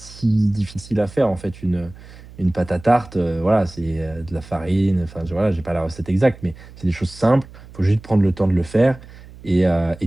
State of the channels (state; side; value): noise; right; hum, 19 dB below the sound